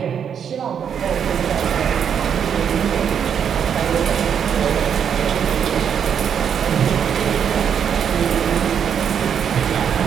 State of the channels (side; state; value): left; quieter; 8.0 dB